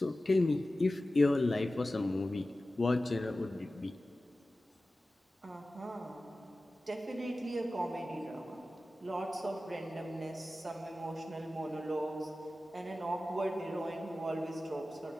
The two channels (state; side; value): normal; both; correlation 0.95